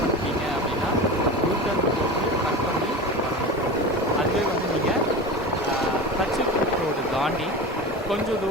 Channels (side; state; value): both; normal; correlation 0.29